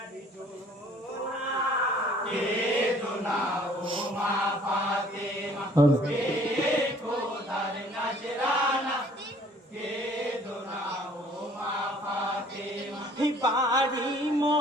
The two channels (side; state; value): both; normal; correlation 0.56